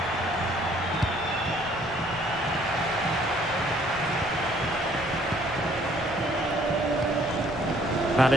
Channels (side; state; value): right; noise; rumble, 19 dB below the sound